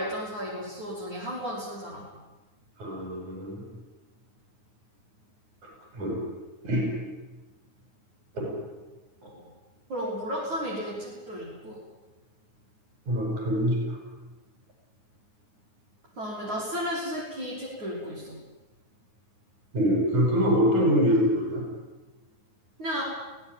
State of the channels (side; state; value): left; late; 9.5 ms